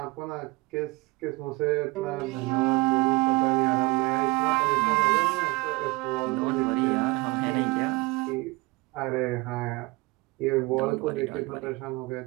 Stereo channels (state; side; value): quieter; left; 24.2 dB